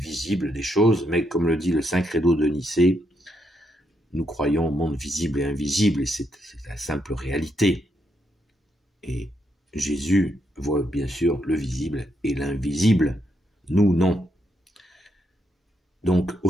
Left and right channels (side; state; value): both; normal; correlation 0.79